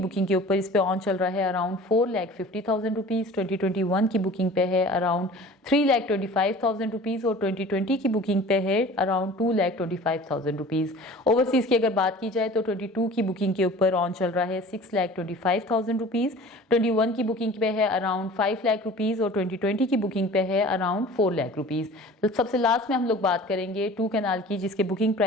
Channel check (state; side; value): normal; both; correlation 0.43